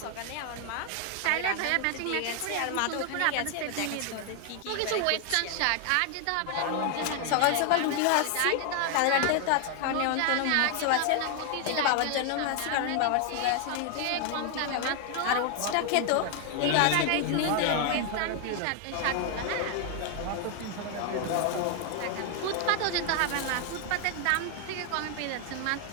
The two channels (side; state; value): both; different; correlation 0.00